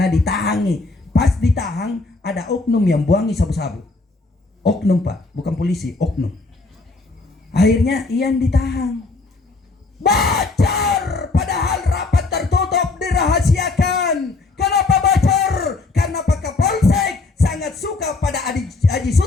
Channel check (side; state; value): right; quieter; 3.5 dB